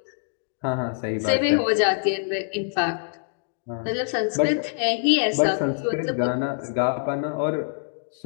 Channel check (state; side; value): silent; right; digital silence